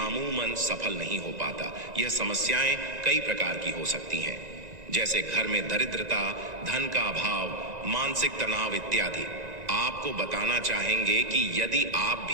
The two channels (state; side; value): late; left; 1.9 ms